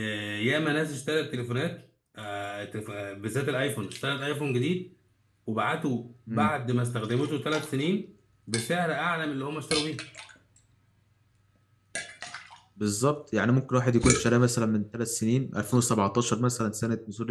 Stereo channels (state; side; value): identical; both; correlation 1.00